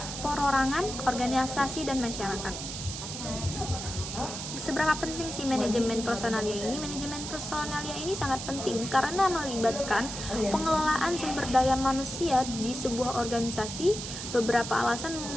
perorangan, organisasi, dan masyarakat. Seberapa penting sih manajemen personalia ini? Manajemen personalia ini sangat penting karena melibatkan pengelolaan sumber daya manusia di sebuah organisasi. Beberapa alasan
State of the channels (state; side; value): noise; right; hiss, 7 dB below the sound